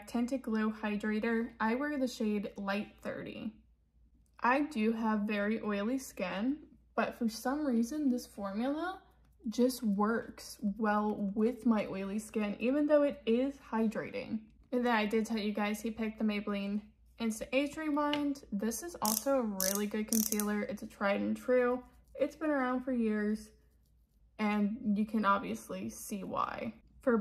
Tinted Glow Hydrator. I wear the shade Light 30. I do have very oily skin, but for some reason this formula just works well with my oily skin, even though it is hydrating. And then I did tell you guys he picked the Maybelline Instant Age Rewind. This is also a really good concealer. It's a tried and true. It's been around for years, and you can obviously see why. For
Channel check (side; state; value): both; identical; correlation 1.00